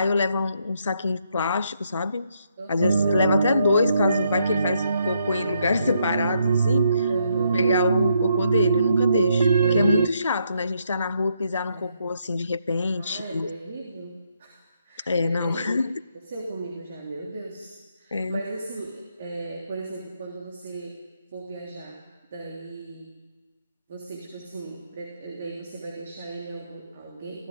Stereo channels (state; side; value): inverted; both; correlation -0.76